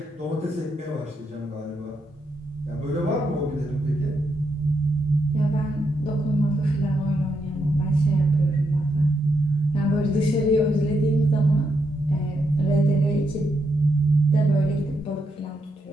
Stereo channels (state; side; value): normal; both; correlation 0.81